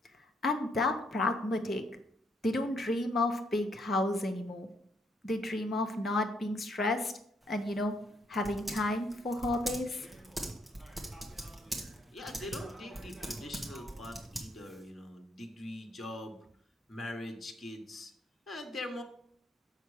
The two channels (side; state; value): both; normal; correlation 0.72